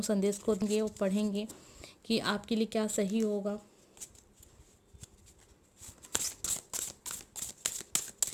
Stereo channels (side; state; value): both; identical; correlation 1.00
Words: संदेश को देंगे और पढ़ेंगे कि आपके लिए क्या सही होगा।